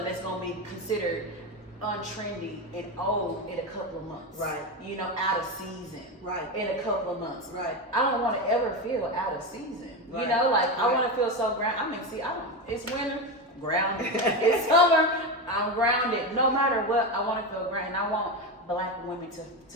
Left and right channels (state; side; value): normal; both; correlation 0.17